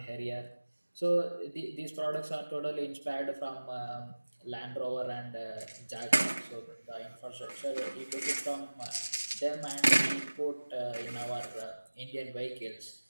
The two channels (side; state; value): both; inverted; correlation -1.00